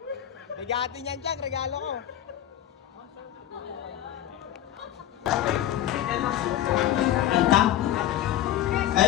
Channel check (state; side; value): quieter; right; 12.0 dB